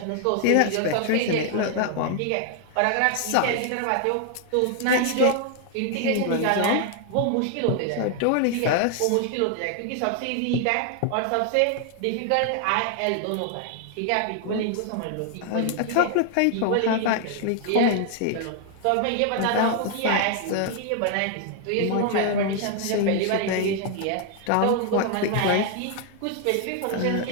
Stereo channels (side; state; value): both; different; correlation 0.00